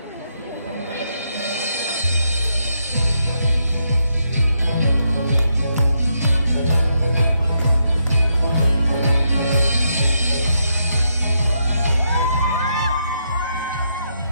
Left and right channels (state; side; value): inverted; both; correlation -0.79